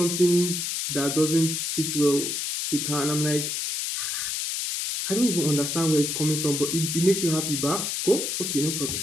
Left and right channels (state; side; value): noise; left; hiss, 2 dB below the sound